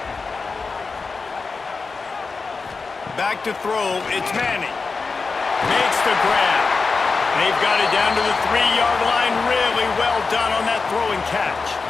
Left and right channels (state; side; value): quieter; right; 4.4 dB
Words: Back to throw, it's Manning. Makes the grab. They've got it down to the 3-yard line. Really well done on that throw and catch.